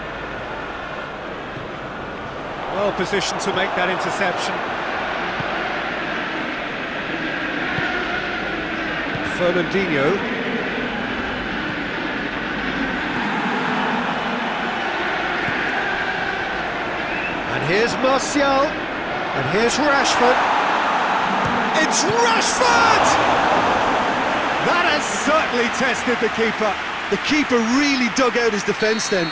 Well positioned to make that interception. Fernandinho. And here's Martial. And here's Rashford. It's Rashford! That has certainly tested the keeper. The keeper really dug out his defence then.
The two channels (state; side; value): identical; both; correlation 1.00